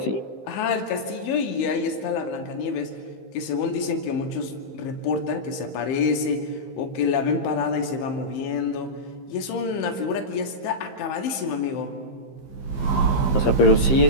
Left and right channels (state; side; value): late; right; 15 ms